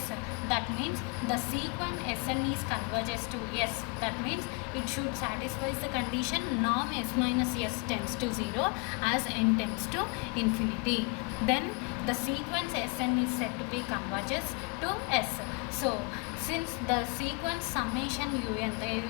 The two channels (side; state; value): right; quieter; 32.4 dB